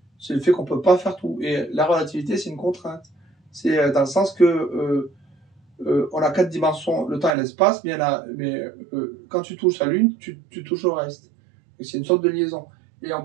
C'est le fait qu'on peut pas faire tout. Et la relativité, c'est une contrainte. C'est dans le sens que on a 4 dimensions, le temps et l'espace, mais quand tu touches la Lune, tu touches au reste. Et c'est une sorte de liaison. Et on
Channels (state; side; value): drops out; left; at 7.4 s